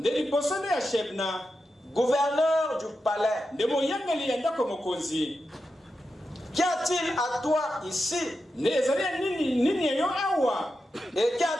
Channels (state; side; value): normal; both; correlation 0.89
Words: gouverneur du palais. Qu'y a-t-il à toi ici? Et